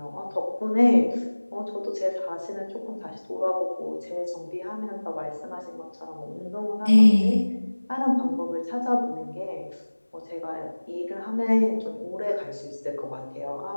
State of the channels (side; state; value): both; inverted; correlation -1.00